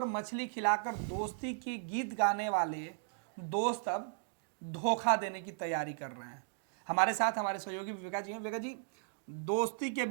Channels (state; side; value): silent; left; digital silence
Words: मछली खिलाकर दोस्ती की गीत गाने वाले दोस्त अब धोखा देने की तैयारी कर रहे हैं। हमारे साथ हमारे सहयोगी विवेका जी हैं। विवेका जी, दोस्ती के